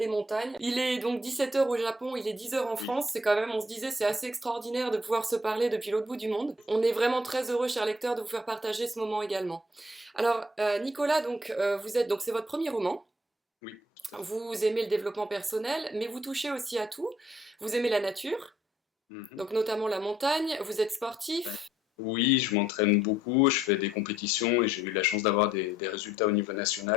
montagnes. Il est donc 17h au Japon, il est 10h en Oui. France. C'est quand même, on se disait, c'est assez extraordinaire de pouvoir se parler depuis l'autre bout du monde. On est vraiment très heureux, chers lecteurs, de vous faire partager ce moment également. Alors Nicolas, donc vous êtes, donc c'est votre premier roman. Oui. Vous aimez le développement personnel, mais vous touchez aussi à tout. Vous aimez la nature, Mhm. donc notamment la montagne. Vous êtes Ouais. sportif. Oui, je m'entraîne beaucoup, je fais des compétitions et j'ai eu la chance d'avoir des résultats au niveau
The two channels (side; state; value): both; normal; correlation 0.65